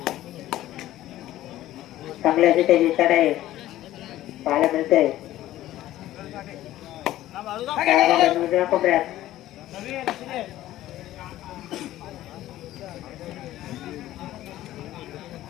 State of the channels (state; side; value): quieter; right; 14.4 dB